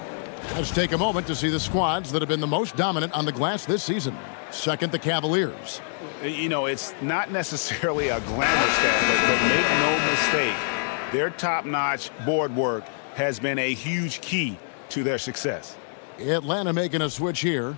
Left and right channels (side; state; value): right; silent; digital silence